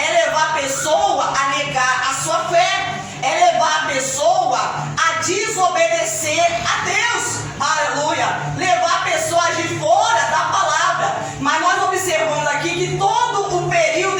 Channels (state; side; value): identical; both; correlation 1.00